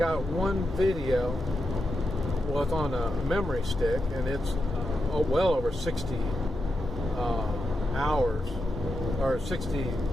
one video. Well, it's on a memory stick, and it's well over 60 hours or 60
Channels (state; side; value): normal; both; correlation 0.87